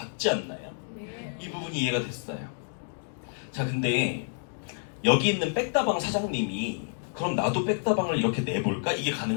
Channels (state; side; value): silent; right; digital silence